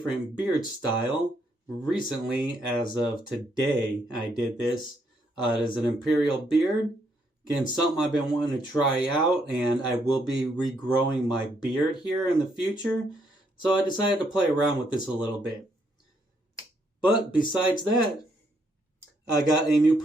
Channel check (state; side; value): normal; both; correlation 0.74